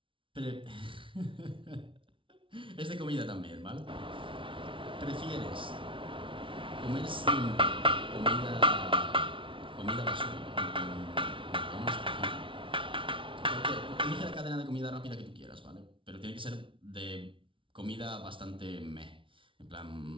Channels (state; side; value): late; left; 0.25 ms